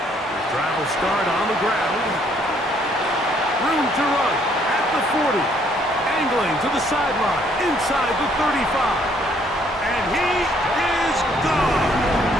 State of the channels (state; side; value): normal; both; correlation 0.66